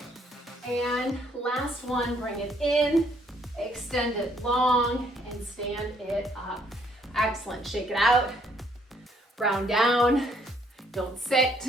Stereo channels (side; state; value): both; normal; correlation 0.67